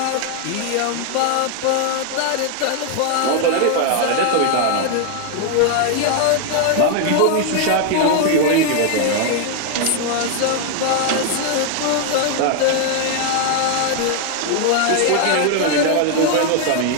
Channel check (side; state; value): both; different; correlation 0.00